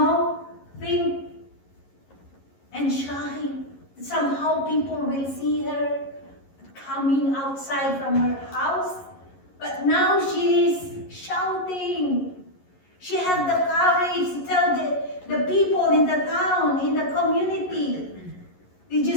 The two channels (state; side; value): late; right; 11 ms